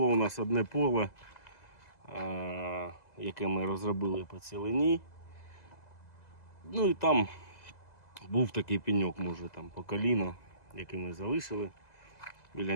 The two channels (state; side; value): late; right; 2.0 ms